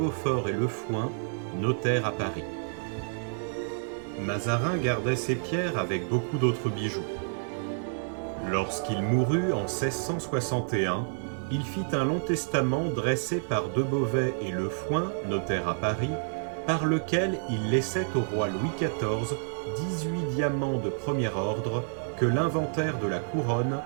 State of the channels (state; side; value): silent; left; 59 dB below the other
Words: et Le Fouin, notaires à Paris. Mazarin gardait ces pierres avec beaucoup d'autres bijoux. Lorsqu'il mourut en 1661, il fit un long testament dressé par De Beauvais et Le Fouin, notaires à Paris, par lequel il laissait au roi Louis XIV 18 diamants de premier ordre que l'inventaire de la couronne